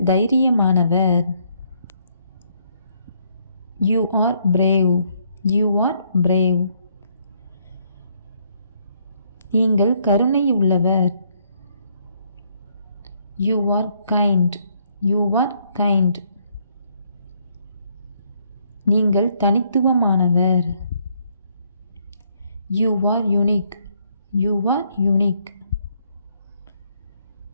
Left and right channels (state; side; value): inverted; both; correlation -0.70